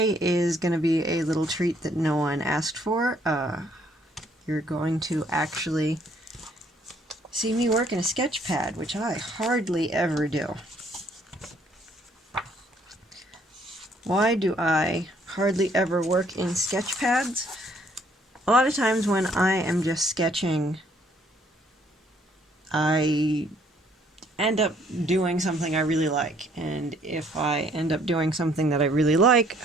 is going to be a little treat that no one asked for. You're going to actually see me work in a sketch pad, which I hardly ever do. Why do I hardly ever work in sketch pads? A lot of times when I am just sketching, I end up doing something I really like, and if I end up doing something that I really like,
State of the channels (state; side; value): normal; both; correlation 0.64